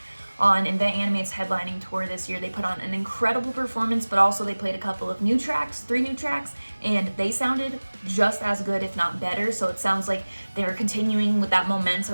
on Invent Animate's headlining tour this year. They put on an incredible performance, but also they played a couple of new tracks, 3 new tracks, and they sounded just as good, if not better. So it sounds like they're continuing with that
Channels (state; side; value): inverted; both; correlation -1.00